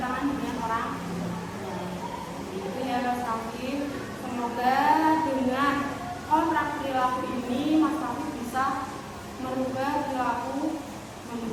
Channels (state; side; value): identical; both; correlation 1.00